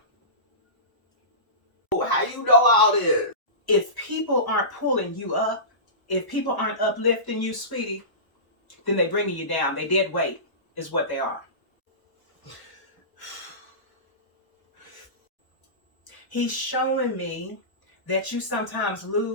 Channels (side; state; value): right; late; 1.1 ms